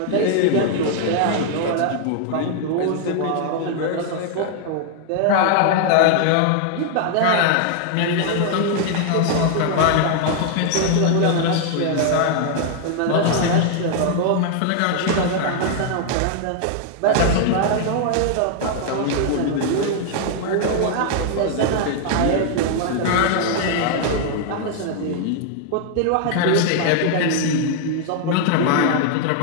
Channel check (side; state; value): both; different; correlation 0.00